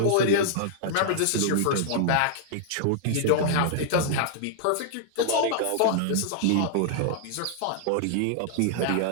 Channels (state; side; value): different; both; correlation -0.01